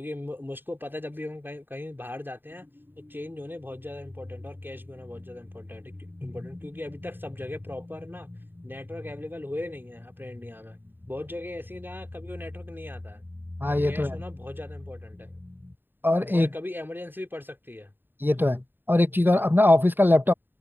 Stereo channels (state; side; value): late; left; 0.095 ms